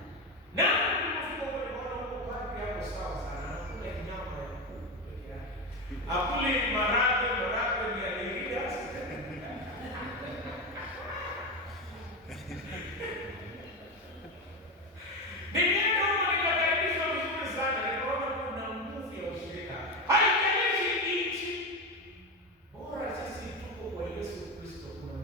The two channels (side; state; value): both; normal; correlation 0.16